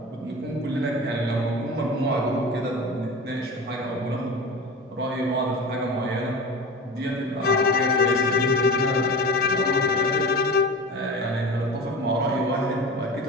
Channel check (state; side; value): normal; both; correlation 0.32